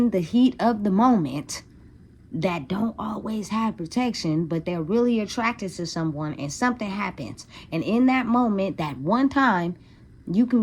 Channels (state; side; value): identical; both; correlation 1.00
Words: the heat of the moment that don't always have protection, but they're really attracted to someone and something happens. And in that moment, that one time, you can